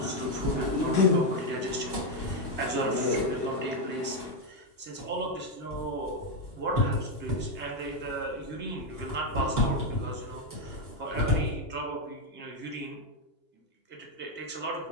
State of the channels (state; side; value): late; right; 2.8 ms